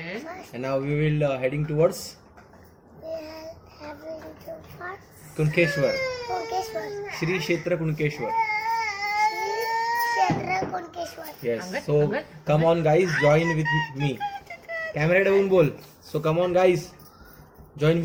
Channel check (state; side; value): identical; both; correlation 1.00